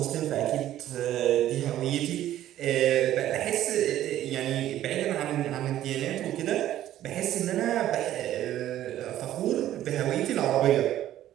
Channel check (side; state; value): left; quieter; 12.8 dB